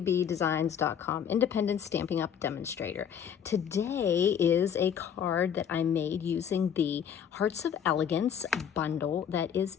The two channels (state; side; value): quieter; right; 8.3 dB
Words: independent Stampin' Up demonstrator. Today is a card that I made using the Hearts of Elegance bundle that is